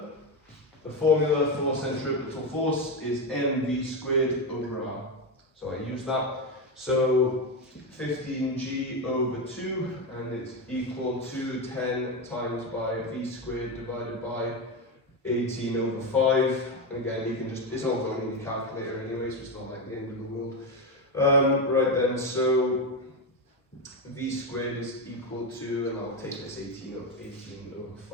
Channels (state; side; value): normal; both; correlation 0.12